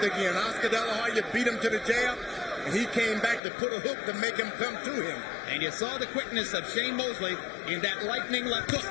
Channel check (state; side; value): drops out; right; at 3.4 s